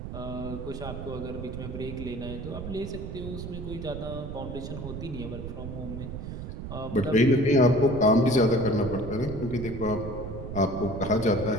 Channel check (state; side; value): noise; right; rumble, 8 dB below the sound